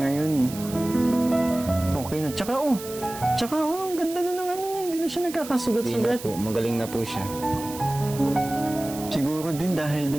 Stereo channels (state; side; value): noise; right; hiss, 13 dB below the sound